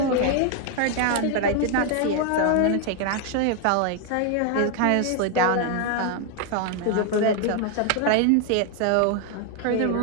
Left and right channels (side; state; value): both; different; correlation 0.00